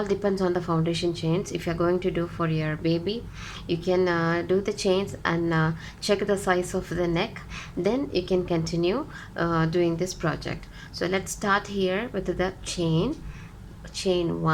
depends on the foundation chains. If you're going to do for your baby, you can do the chains and check the size of the neck, then you can continue doing this project. So let's start here with the chain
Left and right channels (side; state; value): both; identical; correlation 1.00